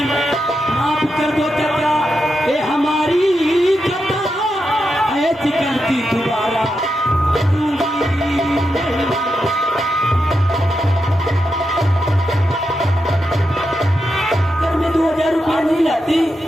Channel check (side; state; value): both; normal; correlation 0.86